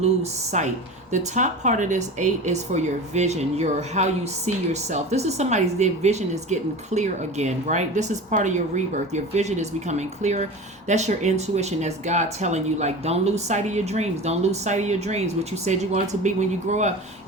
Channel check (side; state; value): both; normal; correlation 0.32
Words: sight The top part of this 8 is for your vision, your how you see yourself. This is somebody's, their vision is getting clear again, right? This is part of your rebirth. Your vision is becoming clearer. That's your intuition. That's God telling you, like, don't lose sight of your dreams. Don't lose sight of your dreams. What you said you wanted to be when you grow up.